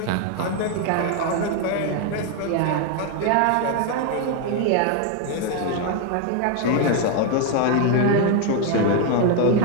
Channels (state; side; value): different; both; correlation 0.01